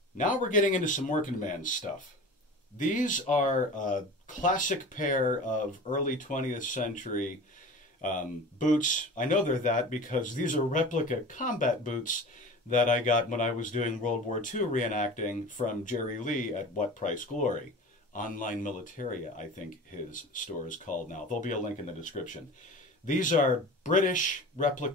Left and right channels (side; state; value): both; normal; correlation 0.36